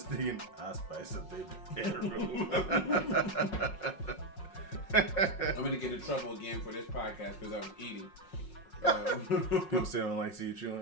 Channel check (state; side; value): late; right; 5.5 ms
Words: thinking, I'll spice up their bedroom. I'm gonna get in trouble again for this podcast because I was eating. People say they don't like to see you